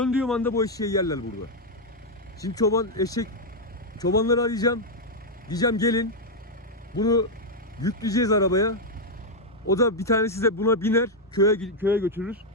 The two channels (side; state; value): both; normal; correlation 0.00